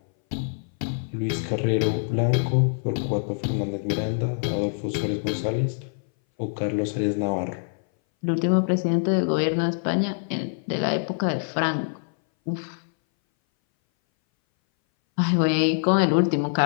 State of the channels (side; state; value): right; silent; 60 dB below the other